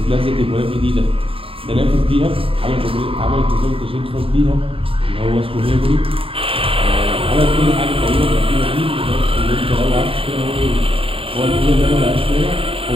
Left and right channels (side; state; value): left; late; 0.27 ms